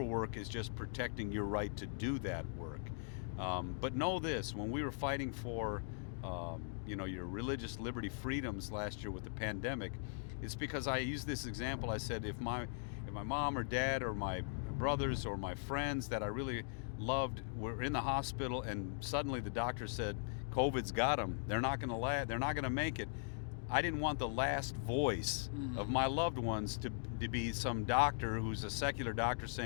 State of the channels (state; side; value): silent; right; digital silence